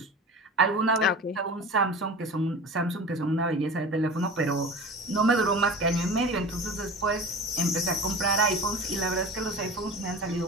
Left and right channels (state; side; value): normal; both; correlation 0.35